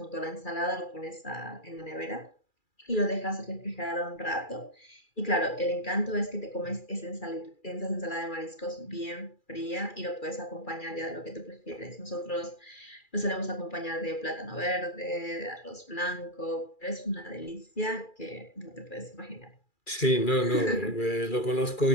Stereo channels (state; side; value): late; right; 2.4 ms